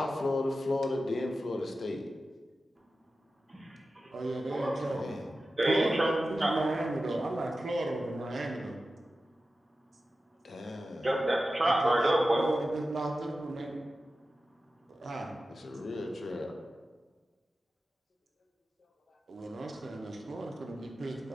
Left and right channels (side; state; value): both; normal; correlation 0.93